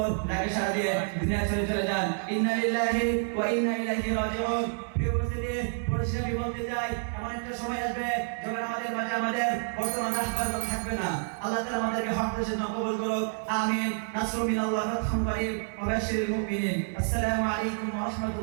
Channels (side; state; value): left; silent; 59 dB below the other